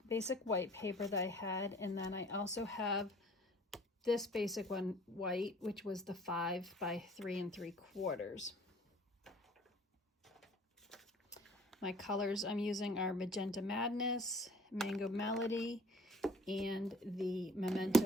basic white paper that I had, and then I also have this basic one white, which was the 5 by 3 3/4. My colors I'm using are Magenta Madness, Mango Melody, and the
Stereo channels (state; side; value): normal; both; correlation 0.52